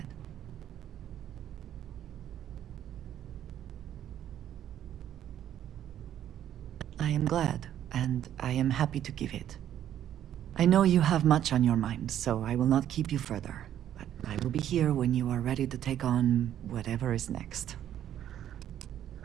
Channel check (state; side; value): quieter; left; 10.9 dB